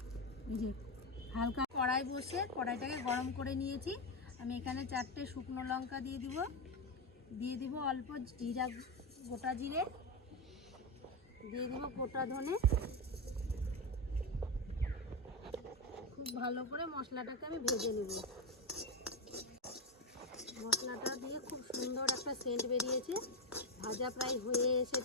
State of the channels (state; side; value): normal; both; correlation 0.11